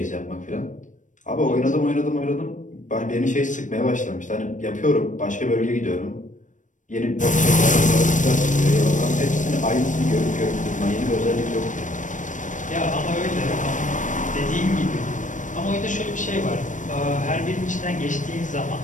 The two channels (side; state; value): right; late; 0.37 ms